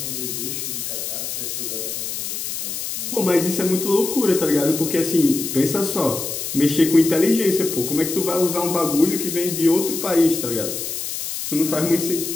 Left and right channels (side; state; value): left; noise; hiss, 5 dB below the sound